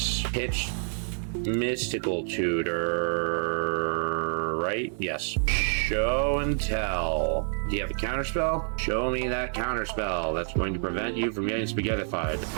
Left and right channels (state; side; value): silent; left; 56 dB below the other